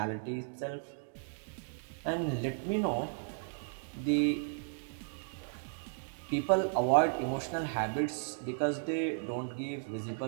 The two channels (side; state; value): left; silent; digital silence